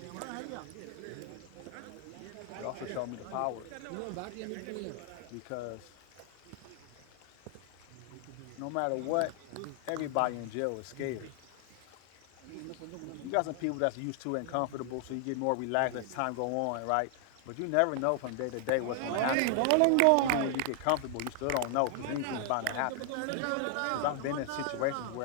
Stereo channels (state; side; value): different; both; correlation 0.00